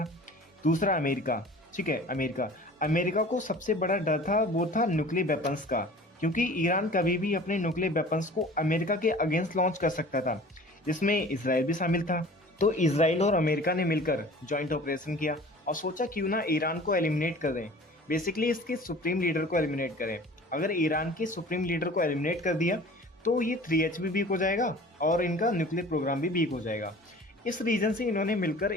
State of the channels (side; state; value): both; normal; correlation 0.44